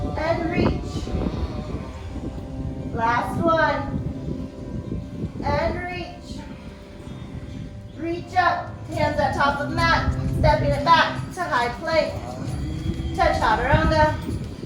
mat, stepping it back to high plank, to chaturanga.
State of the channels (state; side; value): identical; both; correlation 1.00